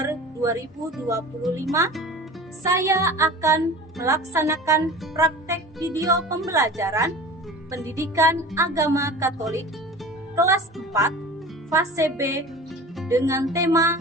2025, saya akan melaksanakan praktek video pembelajaran Pendidikan Agama Katolik kelas 4 fase B dengan tema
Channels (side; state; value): both; normal; correlation 0.38